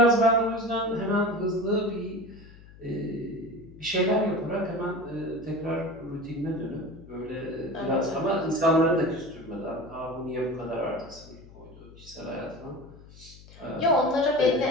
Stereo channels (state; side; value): noise; left; hum, 20 dB below the sound